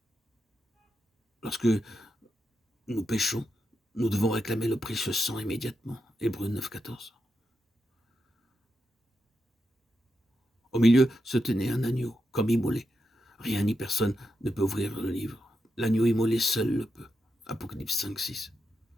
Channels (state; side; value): normal; both; correlation 0.86